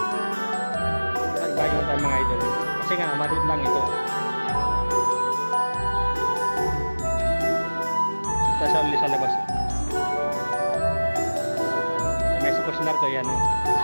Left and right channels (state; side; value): inverted; both; correlation -1.00